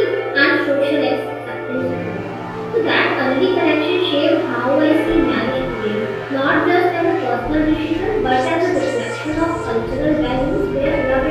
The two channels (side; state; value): both; identical; correlation 1.00